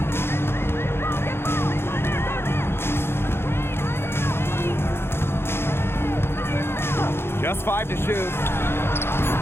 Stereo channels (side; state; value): right; late; 0.11 ms